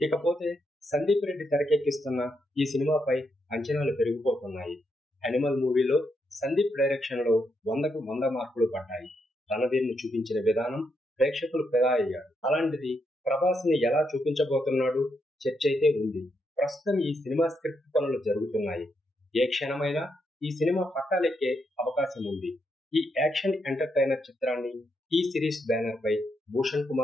ఇకపోతే సందీప్ రెడ్డి తెరకెక్కిస్తున్న ఈ సినిమాపై అంచనాలు పెరిగిపోతున్నాయి. అనిమల్ మూవీలో సందీప్ డైరెక్షన్ లో 100కు 100 మార్కులు పడ్డాయి. రణధీర్ ను చూపించిన విధానం ప్రేక్షకులు ఫిదా అయ్యారు. అలాంటిది ప్రభాస్ ని ఎలా చూపించబోతున్నాడు చర్చ అయితే ఉంది. ప్రస్తుతం ఈ సినిమా స్క్రిప్ట్ పనులు జరుగుతున్నాయి. ఏ క్షణమైనా ఈ సినిమా పట్టాలెక్కే అవకాశం ఉంది. ఈ యాక్షన్ ఎంటర్టైనర్ చిత్రాన్ని టీ సిరీస్ బ్యానర్ పై భూషణ్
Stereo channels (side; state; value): both; normal; correlation 0.80